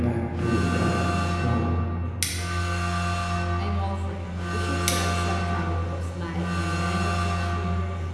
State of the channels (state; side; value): identical; both; correlation 1.00